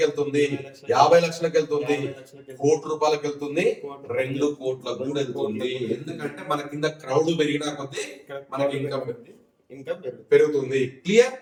వెళ్తుంది, 50 లక్షలకు వెళ్తుంది, 50 లక్షలకి, కోటి రూపాయలకు వెళ్తుంది, 2 కోట్లకు కూడా వెళ్తుంది. ఎందుకంటే మన కింద క్రౌడ్ పెరిగినా కొద్దీ మనకి ఇన్కమ్ ఇన్కమ్ పెరుగుతుంది. క్లియర్?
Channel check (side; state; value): both; identical; correlation 1.00